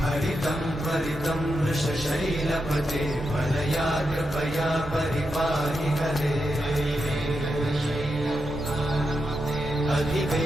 हरितं त्वरितं वृषशैलपते वरया कृपया परिपाहि हरे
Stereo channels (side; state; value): both; normal; correlation 0.86